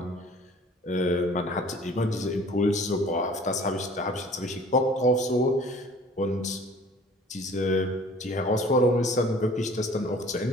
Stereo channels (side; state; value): both; normal; correlation 0.50